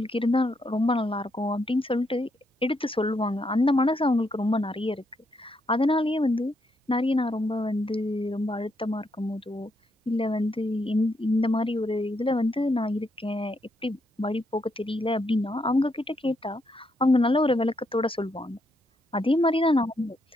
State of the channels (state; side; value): normal; both; correlation 0.78